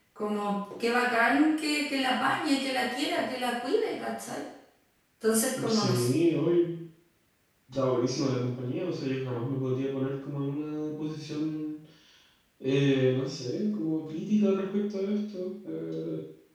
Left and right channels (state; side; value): identical; both; correlation 1.00